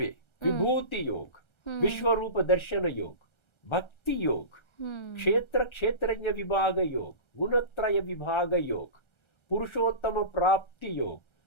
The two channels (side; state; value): right; late; 1.3 ms